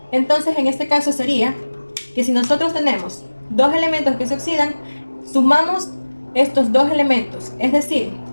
entonces en este caso sería que si nosotros tenemos dos elementos que se oxidan, sumamos estos dos elementos, es decir,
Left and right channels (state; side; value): inverted; both; correlation -1.00